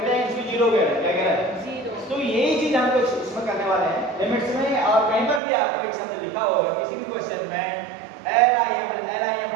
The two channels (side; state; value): left; drops out; at 5.4 s